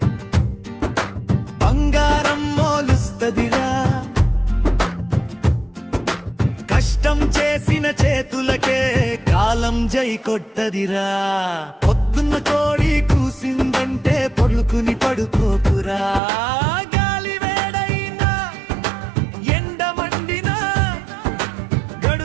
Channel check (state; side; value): drops out; left; at 16.2 s